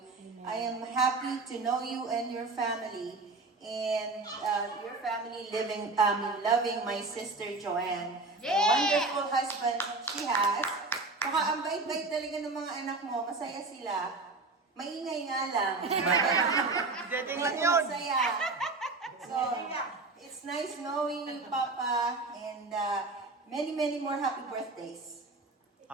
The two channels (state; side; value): quieter; left; 3.5 dB